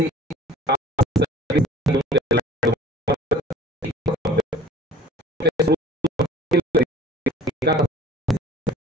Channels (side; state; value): both; normal; correlation 0.48